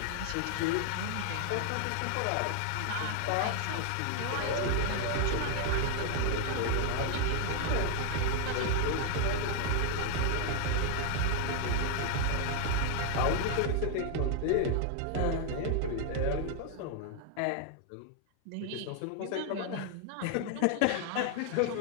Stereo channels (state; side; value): different; both; correlation 0.00